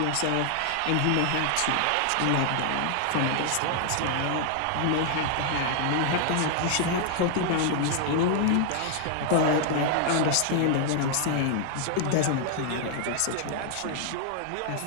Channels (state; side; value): different; both; correlation 0.00